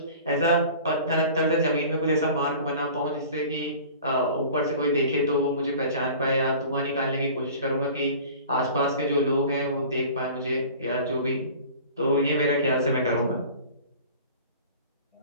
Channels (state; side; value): inverted; both; correlation -0.42